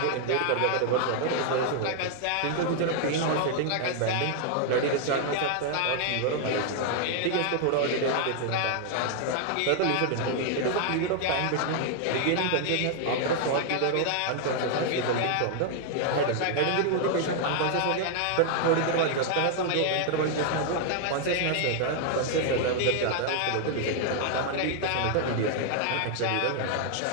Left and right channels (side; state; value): both; different; correlation 0.00